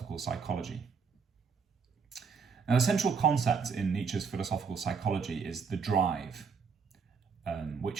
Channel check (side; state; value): left; quieter; 5.7 dB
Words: psychology. Now, the central concept in Nietzsche's philosophical psychology is the drive, which